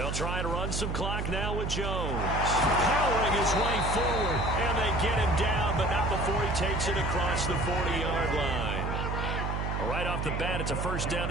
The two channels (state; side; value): noise; right; hum, 1 dB below the sound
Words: try to run some clock now with Jones. Powering his way forward, and they get him down, but not before he takes it across the 40-yard line. Right off the bat, it's a first down